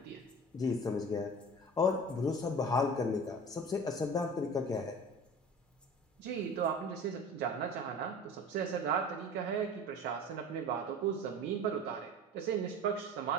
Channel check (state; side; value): normal; both; correlation 0.38